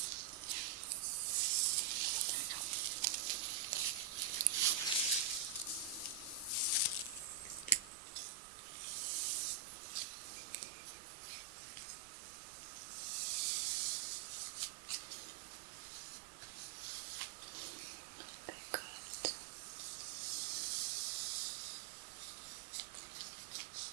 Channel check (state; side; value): drops out; left; at 7.9 s